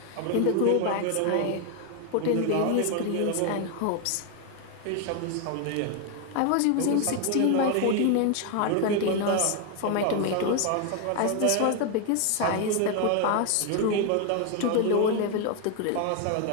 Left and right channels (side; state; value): both; different; correlation 0.01